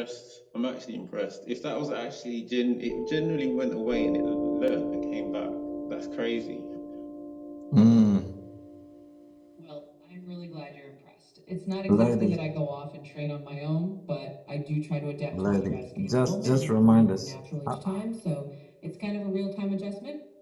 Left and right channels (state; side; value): identical; both; correlation 1.00